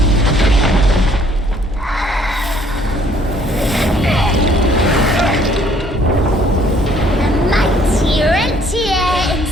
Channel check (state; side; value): normal; both; correlation 0.62